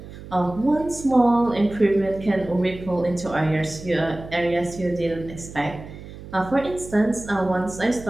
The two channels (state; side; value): noise; right; hum, 14 dB below the sound